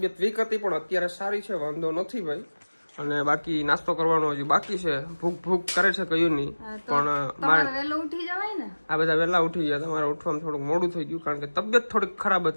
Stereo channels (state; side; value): inverted; both; correlation -1.00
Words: વીક હતી પણ અત્યારે સારી છે, વાંધો નથી ભાઈ. અને બાકી નાસ્તો કરવાનો હજી બાકી છે. ભૂખ કરે છે કયું નહીં, પણ મારે વહેલો ઉઠી જવાય ને. આ બધા વહેલા ઉઠી ગયા. તમારે ઉઠવામાં થોડુંક મોડું થઈ ગયું કારણ કે તબિયત થોડીક ખરાબ